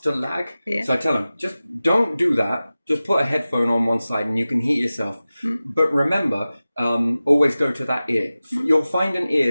to lag. So I tell them, just don't do that. Just put a headphone on one side and you can hear yourself. But remember, always go to that ear. You'll find an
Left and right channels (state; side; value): inverted; both; correlation -0.96